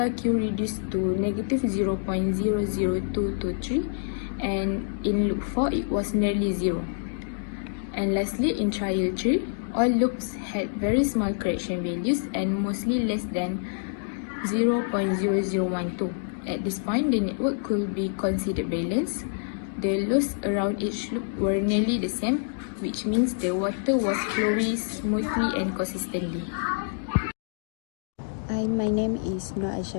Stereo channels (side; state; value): right; silent; digital silence